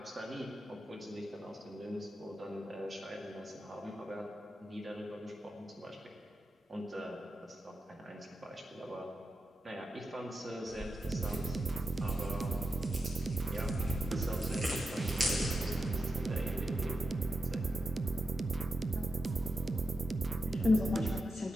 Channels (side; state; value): both; normal; correlation 0.88